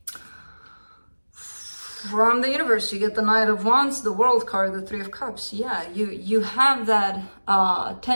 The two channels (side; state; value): both; inverted; correlation -1.00